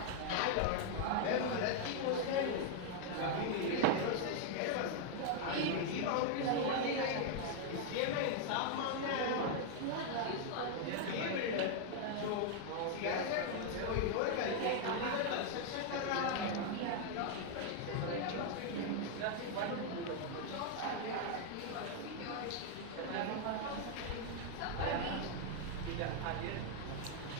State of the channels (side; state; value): both; different; correlation 0.00